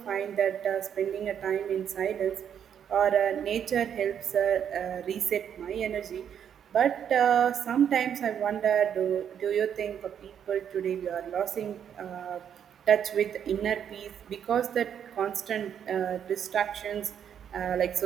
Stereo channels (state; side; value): quieter; left; 8.7 dB